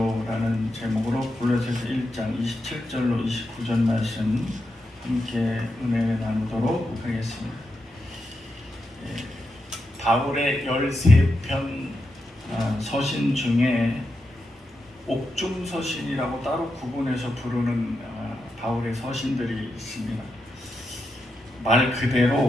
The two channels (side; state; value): both; normal; correlation 0.86